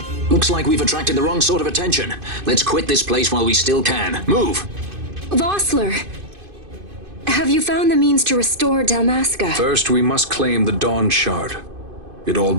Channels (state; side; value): late; left; 2.5 ms